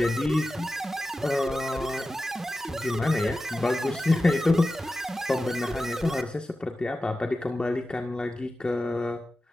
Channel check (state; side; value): normal; both; correlation 0.94